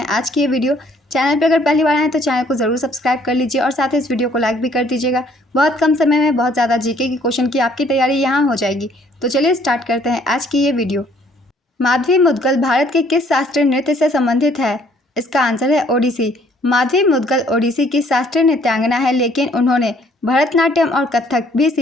आज की ये वीडियो। चैनल पर अगर पहली बार आए तो चैनल को ज़रूर सब्सक्राइब कर लीजिए और साथ ही इस वीडियो को लाइक भी कर दीजिएगा। बहुत कम समय में बहुत ज़्यादा जीके के क्वेश्चन की आपकी तैयारी यहाँ हो जाएगी। तो चलिए स्टार्ट करते हैं आज की ये वीडियो। माधवी मुद्गल भारत के किस शास्त्रीय नृत्य से संबंधित है? इसका आंसर है ओडिसी। माधवी मुद्गल ओडिसी की शास्त्रीय नृत्यांगना है, लेकिन उन्होंने भरतनाट्यम और कथक भी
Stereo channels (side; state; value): both; normal; correlation 0.62